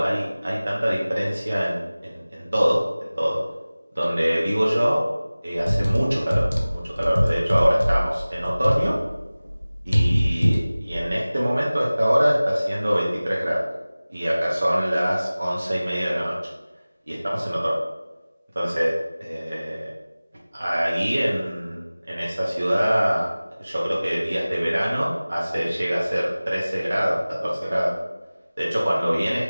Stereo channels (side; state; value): both; inverted; correlation -0.98